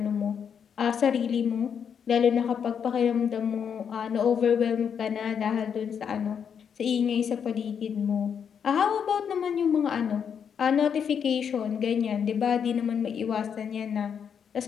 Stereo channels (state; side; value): quieter; right; 7.5 dB